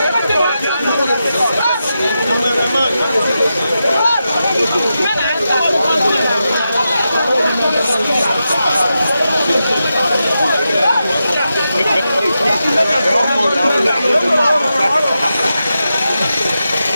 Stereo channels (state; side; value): inverted; both; correlation -0.89